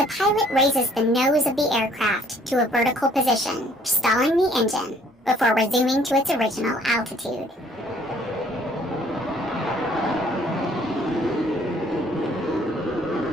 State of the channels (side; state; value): both; normal; correlation 0.60